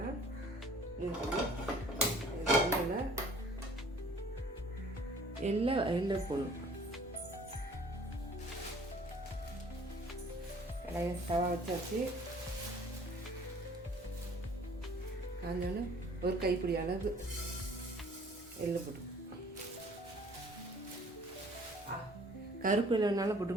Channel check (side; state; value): both; normal; correlation 0.53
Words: எல்லாம் போடணும். கடையை தவா வச்சாச்சு. காஞ்சோன்னு ஒரு கைப்பிடி அளவு எள்ளு போட்டு, கருப்பு எள்ளுனாலும்